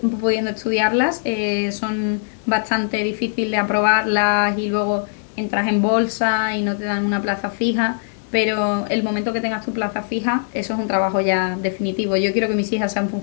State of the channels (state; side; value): silent; right; digital silence